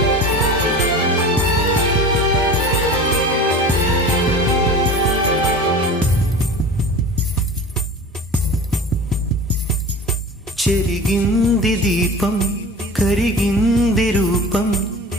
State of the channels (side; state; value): both; normal; correlation 0.36